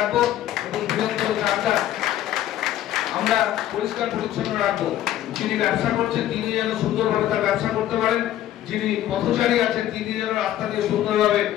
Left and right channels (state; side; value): quieter; right; 12.7 dB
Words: এবং বৃহত্তর চাকদা আমরা পরিষ্কার পরিচ্ছন্ন রাখবো। যিনি ব্যবসা করছেন তিনি যেন সুন্দরভাবে তার ব্যবসা করতে পারেন, যিনি পথচারী আছেন তিনি যেন রাস্তা দিয়ে সুন্দরভাবে